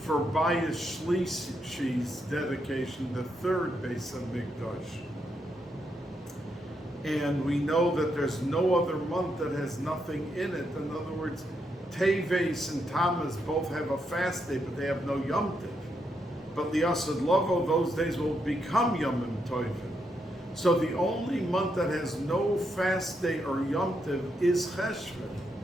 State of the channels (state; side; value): normal; both; correlation 0.80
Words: Bais Shlishi's dedication, the third Bais HaMikdash. And we know that there's no other month that has nothing in it. In other words, Teves and Tammuz both have a fast day, but they have no Yom Tov. But Liasad Lovo, those days will become Yomim Tovim. So the only month that has no fast day or Yom Tov is Cheshvan.